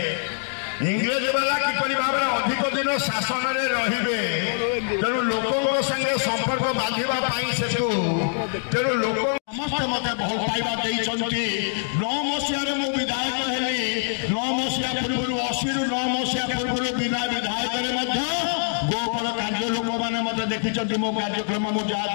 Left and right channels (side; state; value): right; silent; digital silence